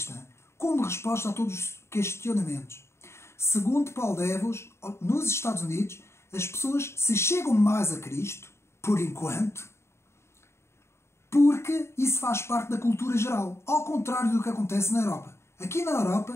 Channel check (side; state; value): right; late; 0.13 ms